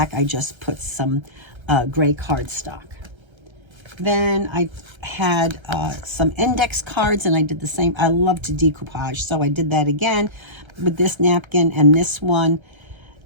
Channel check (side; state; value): left; late; 1.3 ms